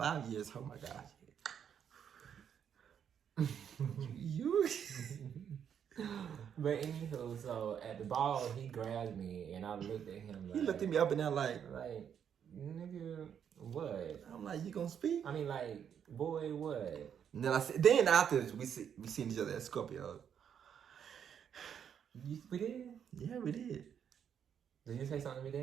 years. Oh my gosh. you. But anywho, so at the ball, he grabbed me and I looked at him like. He looked at me up and down like, nigga, what? I'm like, you gonna speak? I mean, like, boy, what? And then after we seen each other at Scorpio. We did? Yeah, we did. Did you say something to me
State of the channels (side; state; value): left; quieter; 8.3 dB